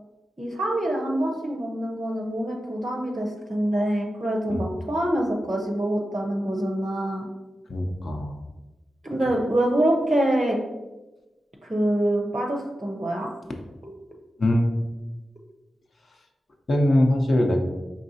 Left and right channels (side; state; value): both; normal; correlation 0.92